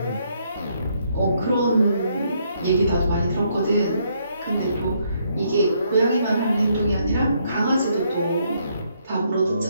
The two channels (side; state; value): both; inverted; correlation -0.72